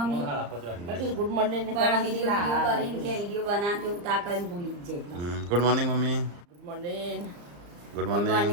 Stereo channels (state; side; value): late; left; 34 ms